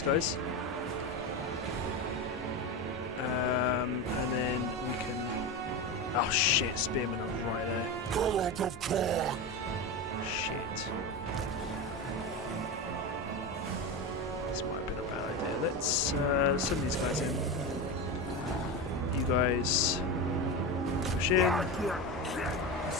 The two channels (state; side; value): normal; both; correlation 0.20